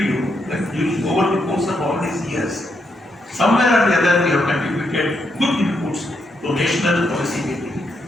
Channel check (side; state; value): both; normal; correlation 0.80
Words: you that over the course of all these years, somewhere or the other we have contributed good inputs to national policy making,